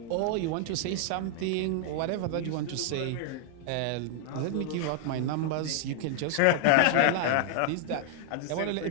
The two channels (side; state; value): both; different; correlation 0.00